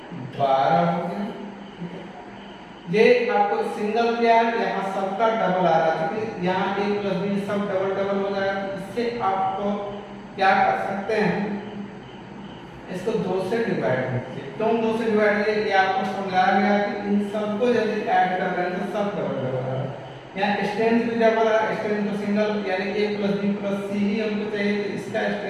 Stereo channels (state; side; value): identical; both; correlation 1.00